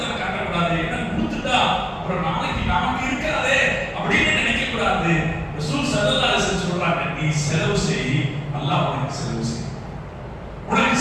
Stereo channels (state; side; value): identical; both; correlation 1.00